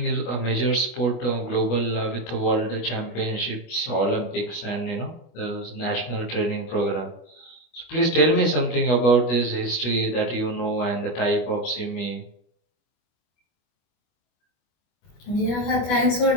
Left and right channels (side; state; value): right; late; 25 ms